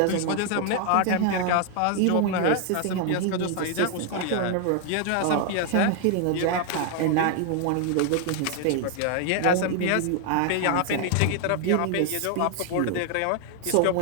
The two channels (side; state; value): both; different; correlation 0.00